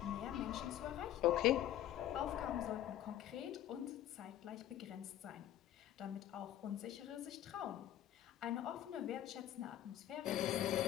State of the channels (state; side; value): quieter; right; 12.2 dB